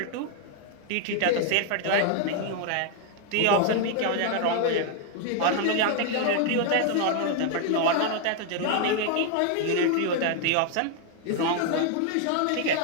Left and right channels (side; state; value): both; different; correlation 0.00